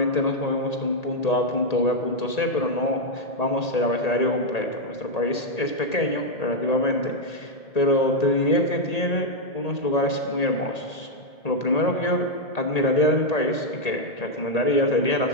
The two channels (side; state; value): right; late; 1.8 ms